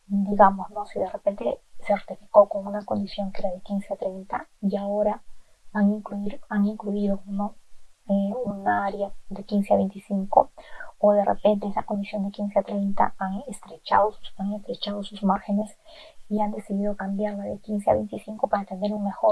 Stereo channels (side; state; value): both; identical; correlation 1.00